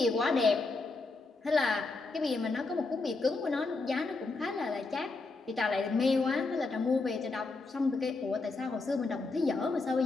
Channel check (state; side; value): quieter; right; 3.6 dB